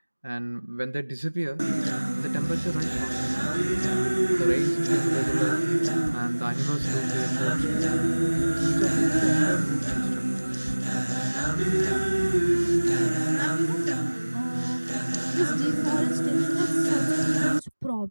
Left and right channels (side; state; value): both; inverted; correlation -1.00